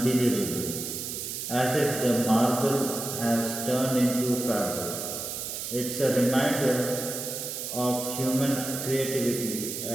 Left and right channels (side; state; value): right; noise; hiss, 5 dB below the sound